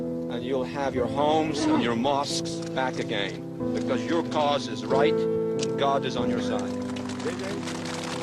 and you'll have your homes and your mosques back again, because your cause is right, and God is on your side.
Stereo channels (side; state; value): both; identical; correlation 1.00